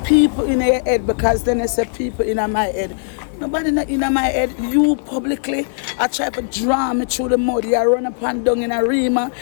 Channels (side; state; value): right; silent; 67 dB below the other